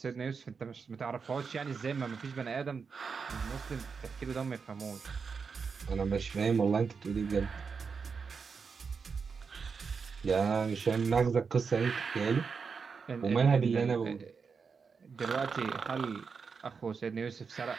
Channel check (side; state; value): left; quieter; 5.5 dB